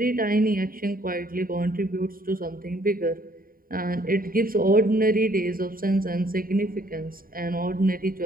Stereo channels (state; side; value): late; left; 0.42 ms